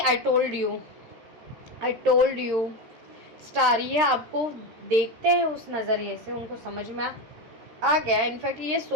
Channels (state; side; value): late; left; 13 ms